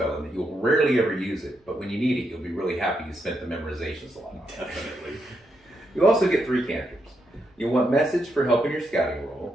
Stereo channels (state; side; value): normal; both; correlation 0.81